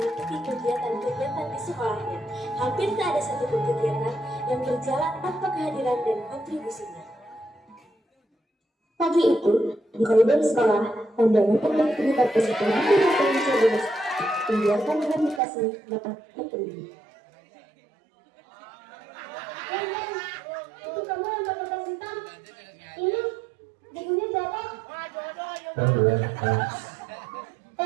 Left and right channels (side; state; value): left; drops out; at 15.4 s